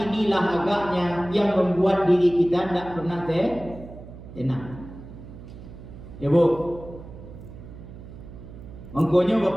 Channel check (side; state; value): right; noise; hum, 15 dB below the sound